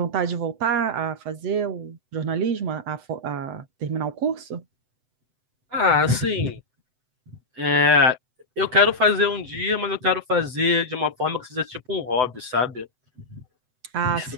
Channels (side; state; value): left; late; 7.9 ms